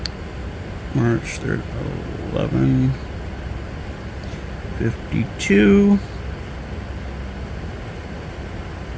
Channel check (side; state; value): both; identical; correlation 1.00